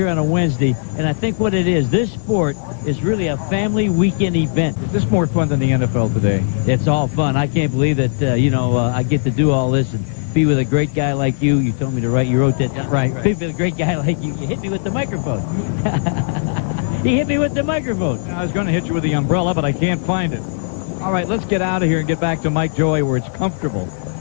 on a Wednesday, and I think what it is, this sport is really a family weekend event. Is this more fun than the NFL today? It's all fun. I can't believe that, I get to do all this and be with a great guy like you. You told me to write, you wrote that down. Right. Be with a great guy like you. You hit me with the microphone. He hit me with the microphone. I was going to hit you with the umbrella, but I can't find it. All right, let's get out of here and get back to Mike Joy where it's comfortable.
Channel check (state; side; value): silent; right; 65 dB below the other